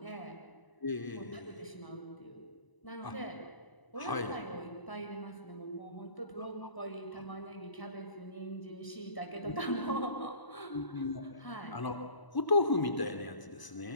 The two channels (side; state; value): right; late; 1.0 ms